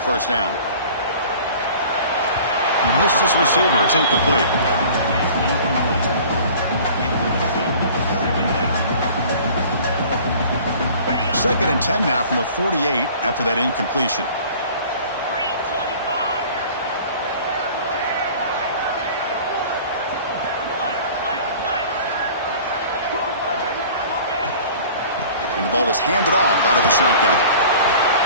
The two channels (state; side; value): inverted; both; correlation -0.46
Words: down. Missed his receiver. It's incomplete. Second and 10 now from the 48 after that incompletion. And the ball is handed off out of the shotgun.